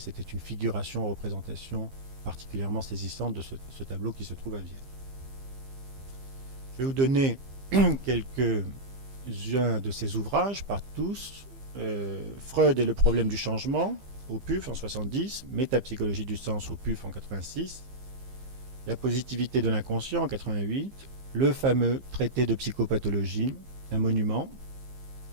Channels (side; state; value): left; late; 15 ms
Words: une figuration, représentation particulièrement saisissante de ce tableau qui se trouve à Vienne. Je vais vous donner quelques-uns de ces ouvrages, par tous. Freud et le problème du changement, au PUF en 70, Métapsychologie du sens au PUF en 86, La positivité de l'inconscient en 88, le fameux traité de psychopathologie, un monument,